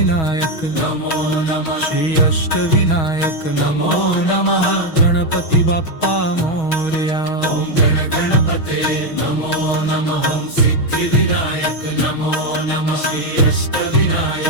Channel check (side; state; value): right; late; 6.3 ms